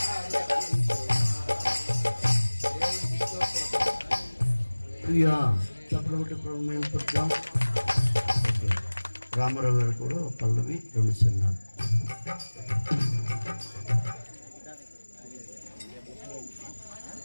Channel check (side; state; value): both; inverted; correlation -1.00